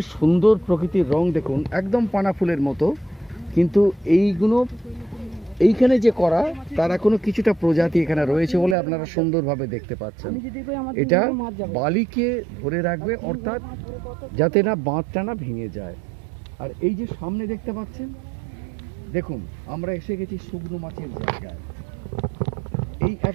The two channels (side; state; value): left; drops out; at 8.8 s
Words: সুন্দর প্রকৃতির রং, দেখুন একদম পানা ফুলের মতো, কিন্তু এইগুলো এইখানে যে করা তার এখনো কিছুটা প্রজাতি এখানে রয়েছে বলে আপনারা সুন্দরভাবে দেখতে পাচ্ছেন। এটা বালিকে ধরে রাখবে, অর্থাৎ যাতে না বাঁধটা না ভেঙে যায়। আর এই যে সামনে দেখতে পাচ্ছেন, দেখুন আমরা এসে গেছি শুকনো মাছের জায়গায়। এই এক